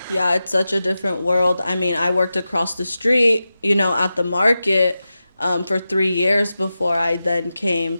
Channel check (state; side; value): inverted; both; correlation -0.93